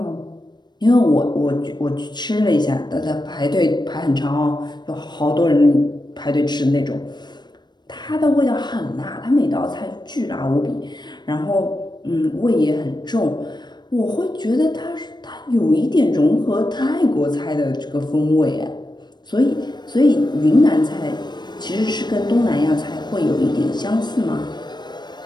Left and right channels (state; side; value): late; right; 0.21 ms